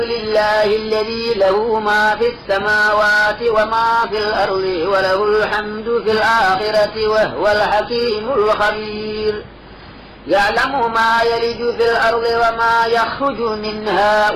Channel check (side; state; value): both; identical; correlation 1.00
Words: الذي له ما في السماوات وما في الأرض وله الحمد في الآخرة وهو الحكيم الخبير. يعلم ما يلج في الأرض وما يخرج منها